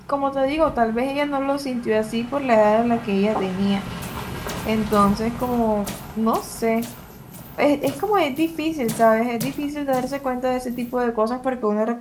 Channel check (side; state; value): both; identical; correlation 1.00